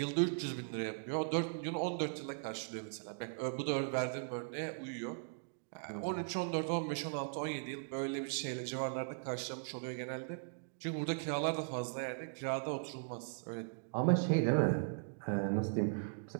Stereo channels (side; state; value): left; silent; digital silence